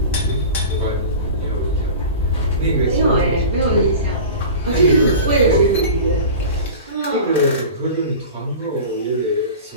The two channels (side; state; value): both; inverted; correlation -0.35